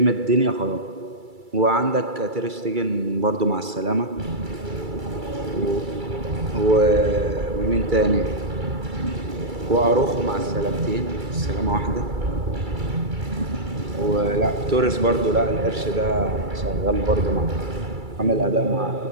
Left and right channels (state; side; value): late; left; 2.3 ms